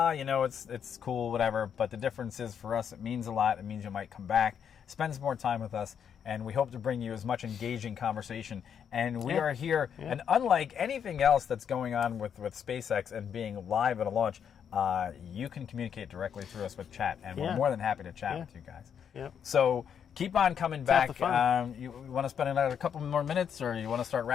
cool, whatever, but the difference is for us, it means a lot. It means you might come back, spend some more time with us, and we hope to bring you as much engaging conversation. And we are here, and unlike anything else that's going on with SpaceX and being live at a launch, you can communicate directly through us with chat, and we're more than happy to chat with you guys. So keep on coming back. You want to spend another couple more minutes, or you want to start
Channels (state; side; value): quieter; right; 8.0 dB